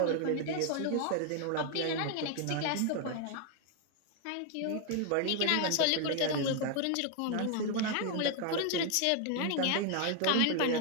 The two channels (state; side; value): different; both; correlation 0.00